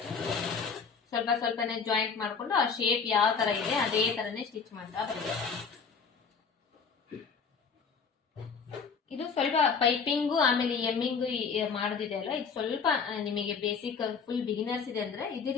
ಸ್ವಲ್ಪನೇ ಜಾಯಿಂಟ್ ಮಾಡ್ಕೊಂಡು ಆ ಶೇಪ್ ಯಾವ ತರ ಇದೆ ಅದೇ ತರನೇ ಸ್ಟಿಚ್ ಮಾಡ್ತಾ ಬರ್ಬೇಕು. ಇದು ಸ್ವಲ್ಪ ಪೈಪಿಂಗು ಆಮೇಲೆ ಎಮ್ಮಿಂಗು ಮಾಡೋದಿದೆ ಅಲ್ಲ, ಇದು ಸ್ವಲ್ಪ ನಿಮಗೆ ಬೇಸಿಕ್ ಫುಲ್ ಬಿಗಿನರ್ಸ್ ಇದೆ ಅಂದ್ರೆ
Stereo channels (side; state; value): right; quieter; 5.7 dB